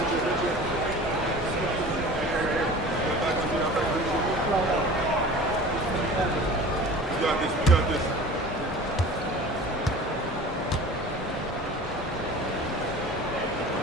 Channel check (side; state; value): both; normal; correlation 0.40